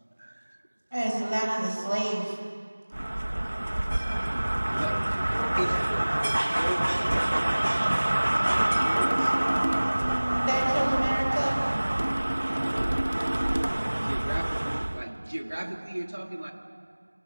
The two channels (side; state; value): both; inverted; correlation -1.00